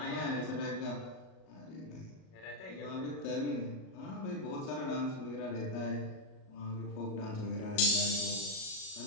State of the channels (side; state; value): right; late; 38 ms